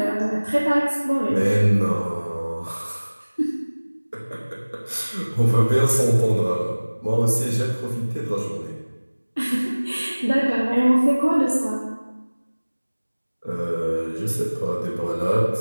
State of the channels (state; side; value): inverted; both; correlation -1.00